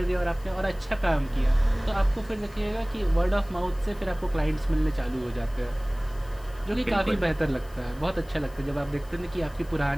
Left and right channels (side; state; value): left; noise; hiss, 26 dB below the sound